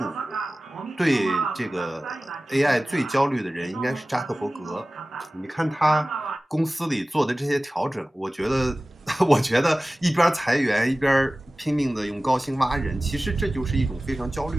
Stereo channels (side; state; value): both; normal; correlation 0.97